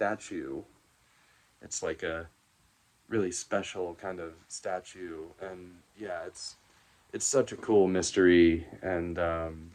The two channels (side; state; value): both; identical; correlation 1.00